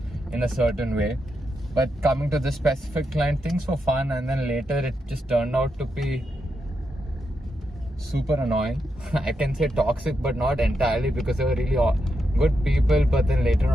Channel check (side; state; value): both; normal; correlation 0.84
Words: in a certain way. But coming to this specific client, things were fun, and then later it just turned out to be super annoying. I can say toxic, but not entirely, because they were really good people, but then later on,